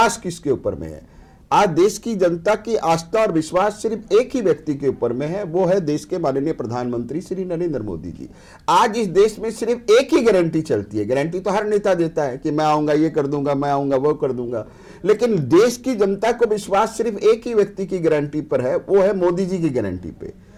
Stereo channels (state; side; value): identical; both; correlation 1.00